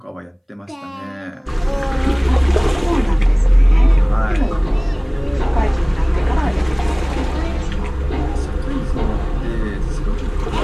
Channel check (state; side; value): identical; both; correlation 1.00